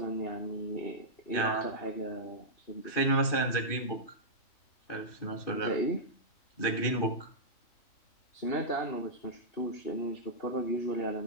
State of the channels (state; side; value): late; right; 2.6 ms